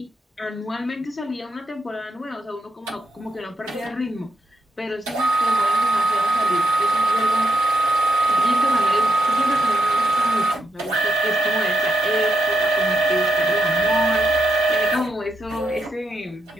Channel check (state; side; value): normal; both; correlation 0.81